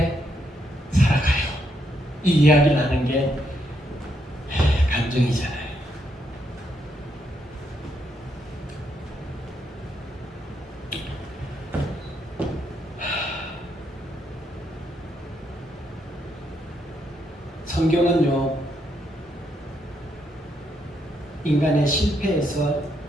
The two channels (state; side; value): normal; both; correlation 0.77